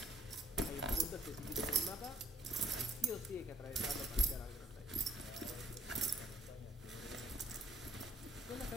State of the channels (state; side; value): normal; both; correlation 0.64